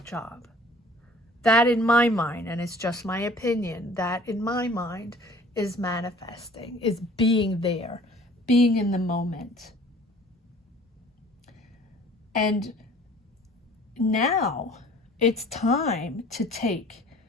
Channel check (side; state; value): both; normal; correlation 0.50